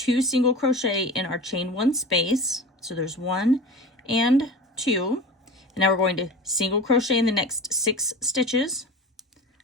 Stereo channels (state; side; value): normal; both; correlation 0.33